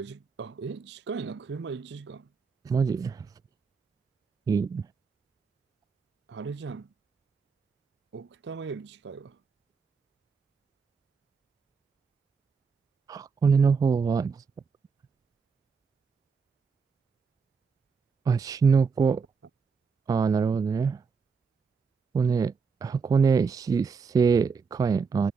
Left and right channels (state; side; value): quieter; left; 5.4 dB